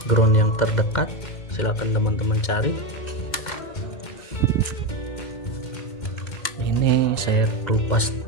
Ground yang terdekat silahkan teman-teman cari. Ini saya kelupas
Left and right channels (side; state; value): right; late; 2.1 ms